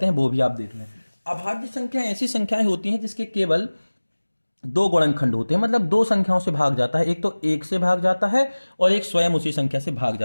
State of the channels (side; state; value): both; inverted; correlation -1.00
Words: हैं वो भी आप देख लें। अभाज्य संख्या ऐसी संख्याएं होती हैं जिसके केवल दो गुणनखंड होते हैं, मतलब दो संख्याओं से भाग जाता है। एक तो एक से भाग जाता है और एक स्वयं उसी संख्या से भाग